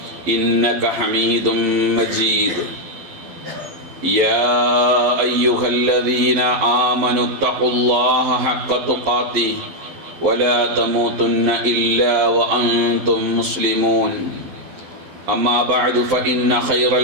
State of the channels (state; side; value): late; left; 11 ms